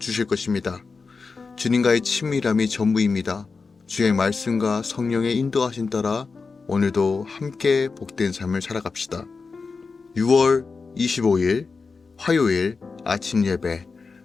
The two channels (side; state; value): right; quieter; 4.6 dB